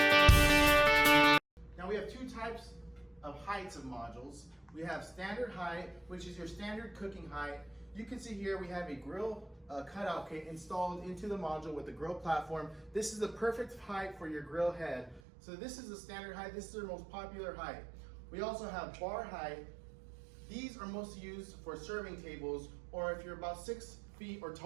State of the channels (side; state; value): left; drops out; at 15.2 s